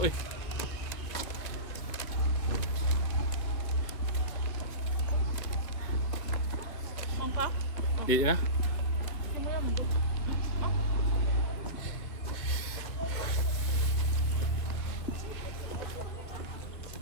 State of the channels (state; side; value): late; right; 2.4 ms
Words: eh. Di na.